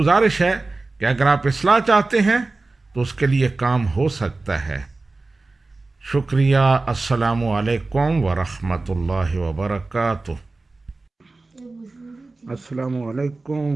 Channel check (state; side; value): quieter; left; 3.4 dB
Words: ہے کہ اگر آپ اصلاح چاہتے ہیں تو اس کے لیے کام ہو سکتا ہے۔ شکریہ۔ السلام علیکم ورحمۃ اللہ وبرکاتہ۔ السلام